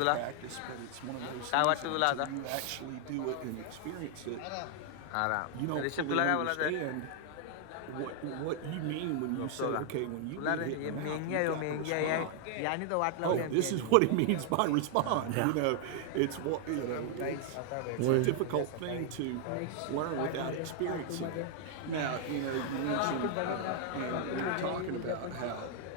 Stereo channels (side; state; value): both; different; correlation 0.00